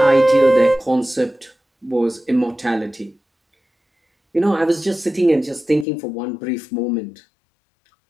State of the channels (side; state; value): right; drops out; at 5.9 s